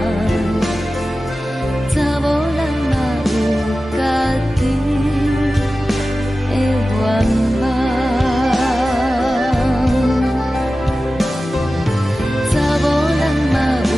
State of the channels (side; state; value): both; normal; correlation 0.95